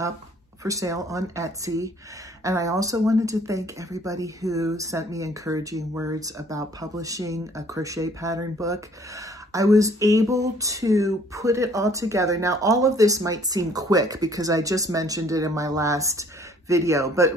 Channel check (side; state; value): both; normal; correlation 0.58